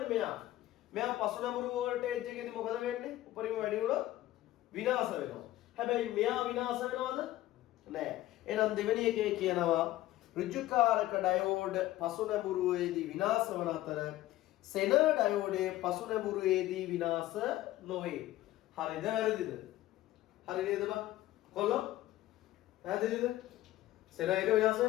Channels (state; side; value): quieter; right; 15.5 dB